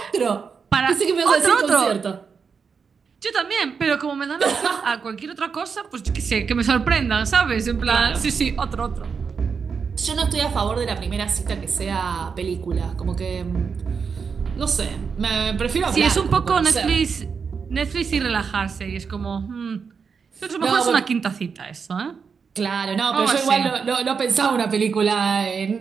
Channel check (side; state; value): left; quieter; 5.8 dB